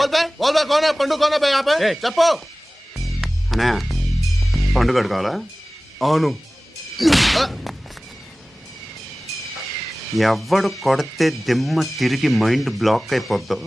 కోనా పండు కోనా బే ఆపే చెప్పు. అన్నయ్య పండుగ కావాలా? అవును. ఎవడు కొడితే దిమ్మ తిరిగి మైండ్ బ్లాక్ అయిపోద్దో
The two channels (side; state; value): both; normal; correlation 0.98